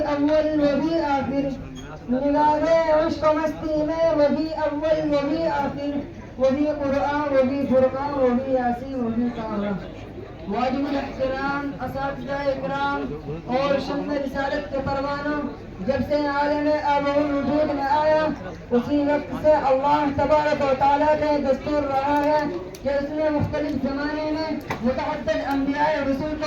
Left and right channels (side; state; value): both; identical; correlation 1.00